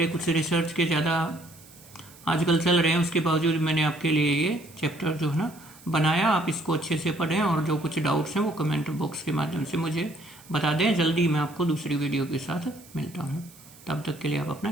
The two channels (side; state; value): right; noise; hiss, 23 dB below the sound